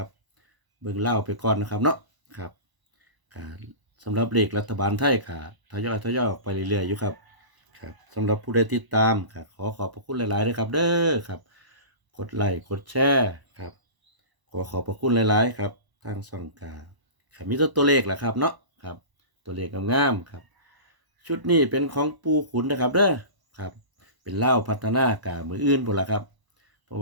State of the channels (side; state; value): left; late; 1.0 ms